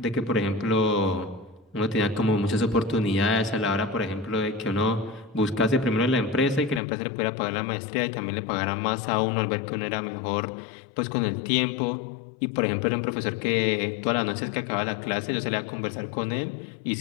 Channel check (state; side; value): drops out; right; at 6.8 s